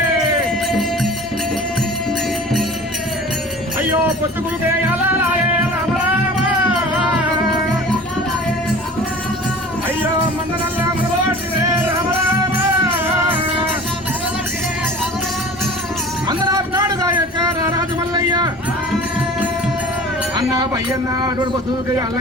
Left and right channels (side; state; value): both; normal; correlation 0.41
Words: అయ్యో పొత్తుకులుకే అలాయే రామ రామ అయ్యో మందనల్లా పట్టినే రామ రామ మందరాపు నాడుగా యొక్క రాజు మల్లయ్య అన్న పయ్యన్న అటువంటి పొత్తుకే